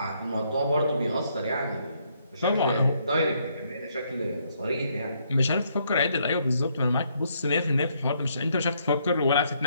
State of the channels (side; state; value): both; inverted; correlation -0.72